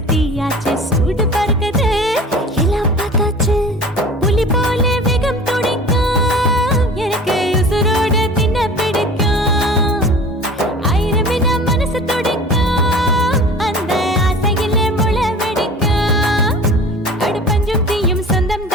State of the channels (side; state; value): both; normal; correlation 0.41